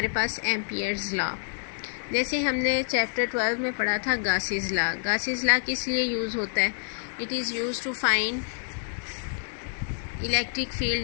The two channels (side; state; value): right; silent; digital silence